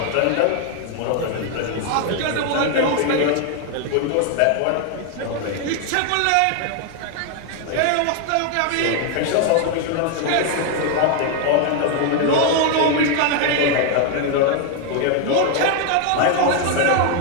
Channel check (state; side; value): different; both; correlation 0.01